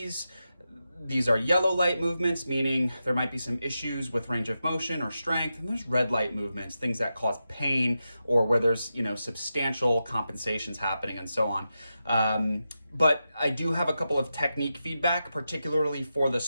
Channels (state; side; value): inverted; both; correlation -0.89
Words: These are yellow light movements, meaning there might be some issues with range of motion or strength, and there's red light movements, things that cause pain or where there's, substantial compensations happening and so on. But I do have a couple of technique feedback, particularly for the